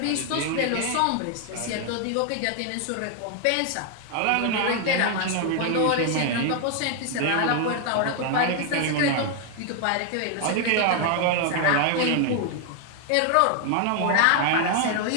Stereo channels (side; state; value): both; different; correlation 0.00